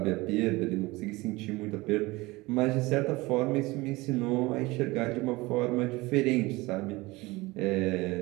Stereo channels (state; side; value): quieter; left; 21.7 dB